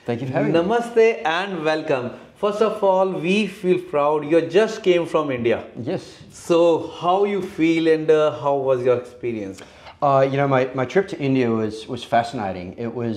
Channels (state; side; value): identical; both; correlation 1.00